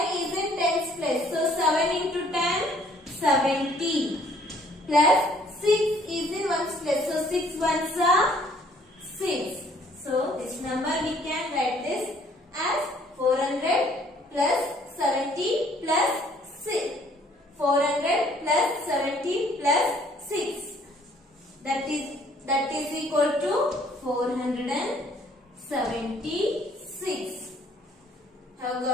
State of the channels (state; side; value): normal; both; correlation 0.60